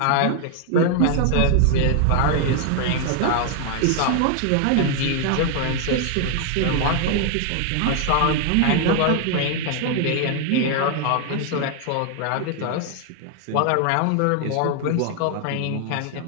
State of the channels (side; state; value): both; different; correlation 0.00